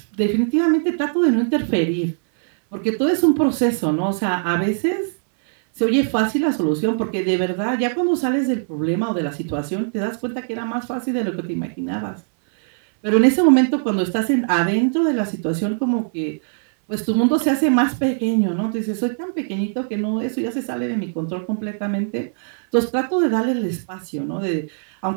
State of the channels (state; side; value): silent; left; 65 dB below the other